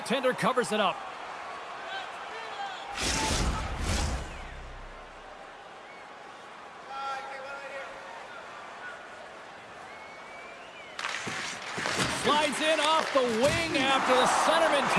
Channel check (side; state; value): both; identical; correlation 1.00